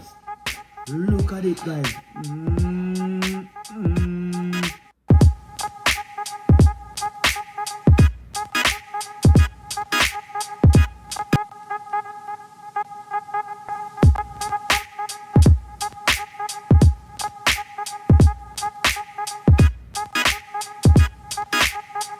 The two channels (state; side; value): identical; both; correlation 1.00